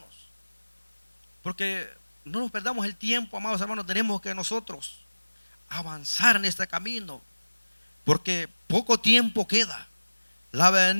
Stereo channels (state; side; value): inverted; both; correlation -1.00